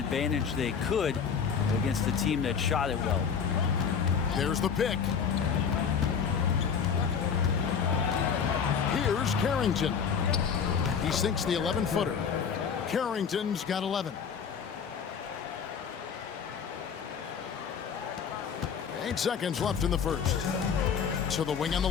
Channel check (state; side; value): quieter; right; 6.7 dB